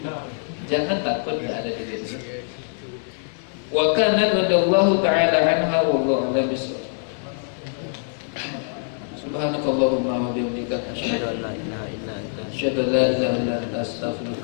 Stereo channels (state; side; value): silent; right; 63 dB below the other